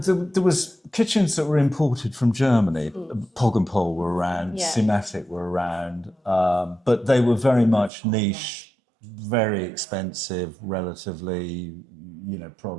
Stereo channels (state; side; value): drops out; left; at 7.9 s